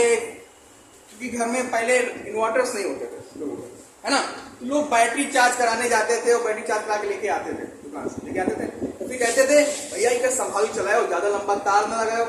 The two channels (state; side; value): identical; both; correlation 1.00